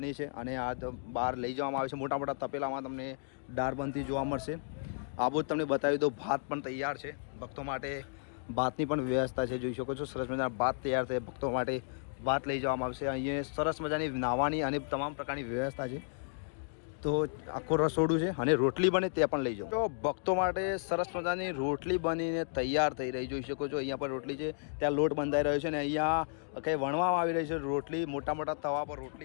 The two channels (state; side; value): silent; right; digital silence